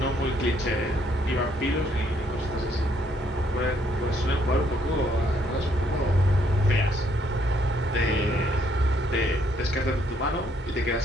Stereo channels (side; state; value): both; normal; correlation 0.70